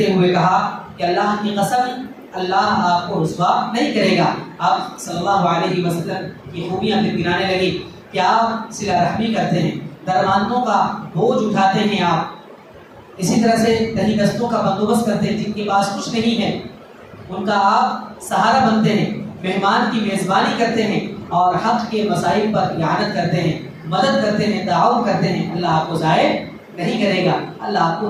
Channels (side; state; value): both; identical; correlation 1.00